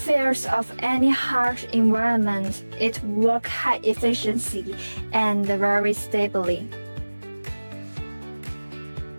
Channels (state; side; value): inverted; both; correlation -1.00